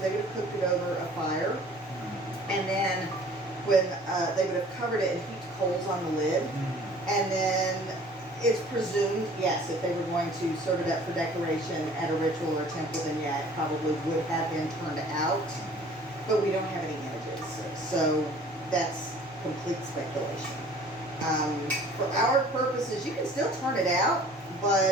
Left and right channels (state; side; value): normal; both; correlation 0.50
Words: they would have cooked it over a fire, and then when they would have covered it and heaped coals on the lid, and then it's presumed, yes, if they were going to serve it up for decoration at a ritual or temple, then yeah, it probably would have been turned out, but we don't have any images, so that's complete speculation. For our purposes, you can still turn it out,